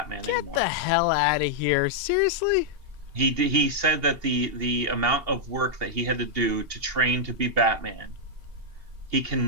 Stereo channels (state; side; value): late; left; 2.8 ms